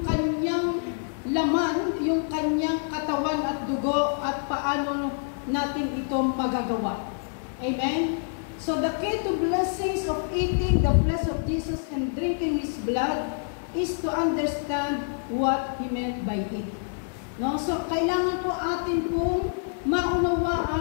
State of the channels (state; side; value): silent; right; digital silence